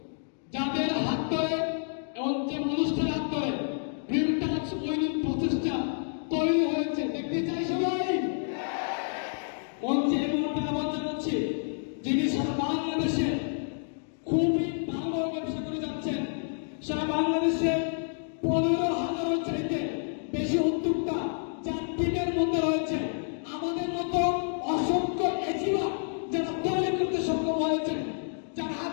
যাদের হাত ধরে এবং যে মানুষটার হাত ধরে ড্রিমটা ওইদিন প্রচেষ্টা তৈরি হয়েছে দেখতে চাই সবাই। মঞ্চে এবং আহ্বান জানাচ্ছি যিনি সারা মধ্যে রয়েছে আমাদের মতো অসংখ্য এজিবা যারা তৈরি করতে সক্ষম হয়েছে, যার হাত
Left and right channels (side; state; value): right; silent; digital silence